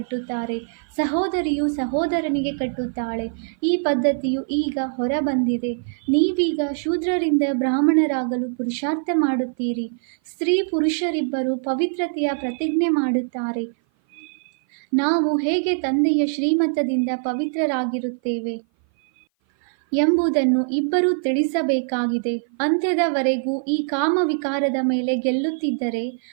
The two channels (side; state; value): left; silent; 57 dB below the other